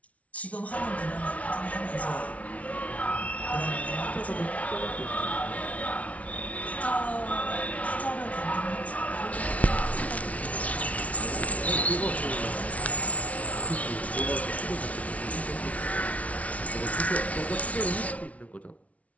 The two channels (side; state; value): right; late; 0.067 ms